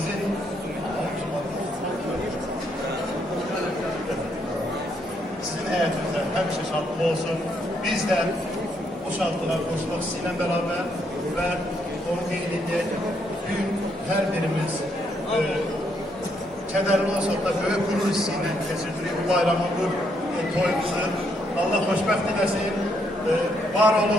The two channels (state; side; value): normal; both; correlation 0.74